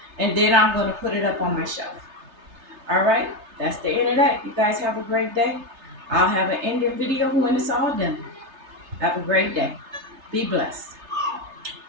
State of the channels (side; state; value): left; late; 3.3 ms